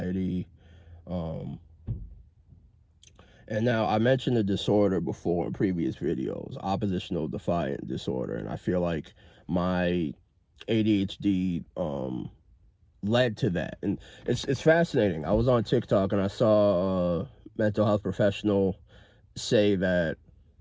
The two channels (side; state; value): both; identical; correlation 1.00